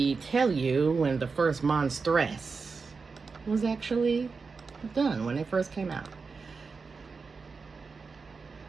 tell you when the first Monstress was actually done, when it first came out.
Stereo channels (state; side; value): quieter; left; 4.7 dB